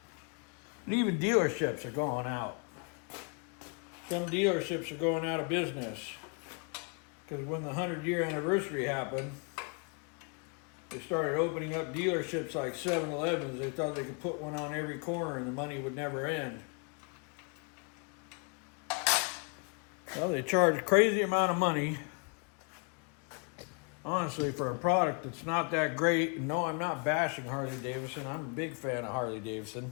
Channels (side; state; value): right; quieter; 37.3 dB